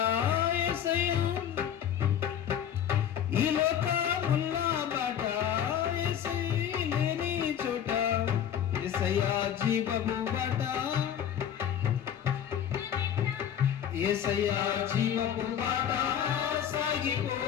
యేసయ్యా, ఈ లోకముల్లా బాట యేసయ్య లేని చోట యేసయ్యా జీవపు బాట, యేసయ్యా జీవపు బాట సాగిపో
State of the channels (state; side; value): quieter; right; 9.4 dB